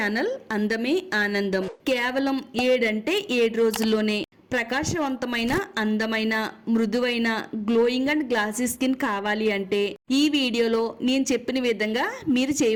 అందమే ఆనందం. కేవలం 7 రోజుల్లోనే ప్రకాశవంతమైన, అందమైన, మృదువైన, గ్లోయింగ్ అండ్ గ్లాసీ స్కిన్ కావాలి అంటే ఈ వీడియోలో నేను చెప్పిన విధంగా మీరు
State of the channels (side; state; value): both; identical; correlation 1.00